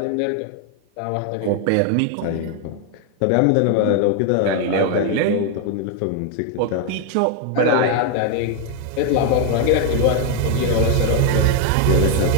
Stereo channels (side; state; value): both; different; correlation 0.01